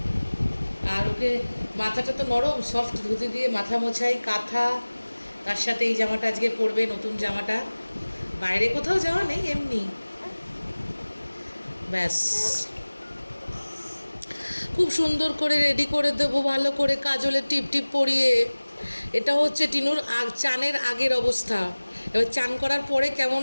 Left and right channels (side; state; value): both; inverted; correlation -1.00